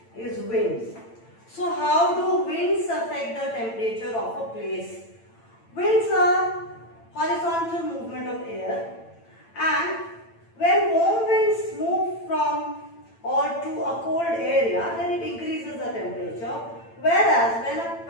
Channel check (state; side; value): late; right; 8.9 ms